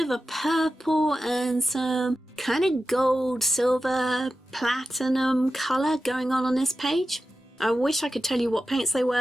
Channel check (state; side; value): normal; both; correlation 0.92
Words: a purple and some kind of gold, silver, platinum colour going on this page. I wish I could tell you what paints they